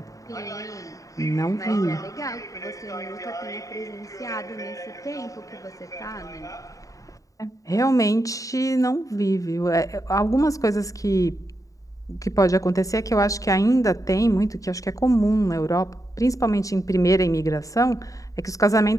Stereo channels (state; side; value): late; right; 0.16 ms